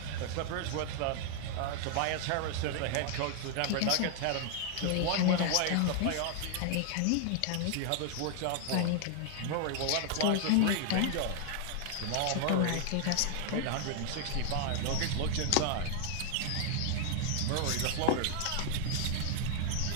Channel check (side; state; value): both; different; correlation 0.00